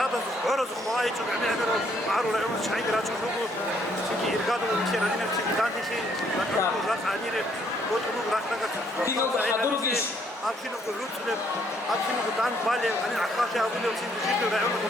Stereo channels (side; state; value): both; normal; correlation 0.68